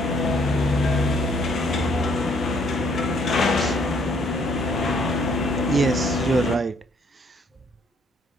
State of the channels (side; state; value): both; normal; correlation 0.66